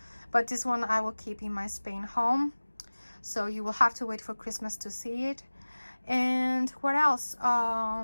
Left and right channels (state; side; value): inverted; both; correlation -1.00